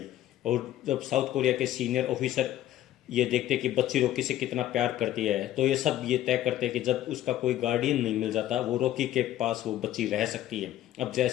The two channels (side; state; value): right; quieter; 13.2 dB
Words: और जब साउथ कोरिया के सीनियर ऑफिसर ये देखते कि बच्ची रॉकी से कितना प्यार करती है, तो ये सब ये तय करते हैं कि जब उसका कोई गार्डियन नहीं मिल जाता, वो रॉकी के पास वो बच्ची रह सकती है। अब